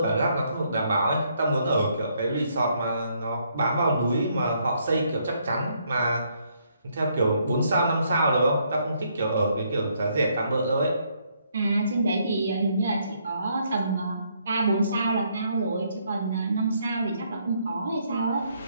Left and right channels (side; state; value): both; inverted; correlation -0.71